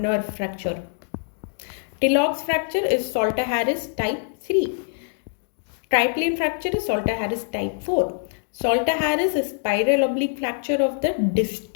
fracture. Tillock's fracture is Salter-Harris type 3. Triplane fracture is Salter-Harris type 4. Salter-Harris is spiral oblique fracture of the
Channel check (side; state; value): right; silent; 61 dB below the other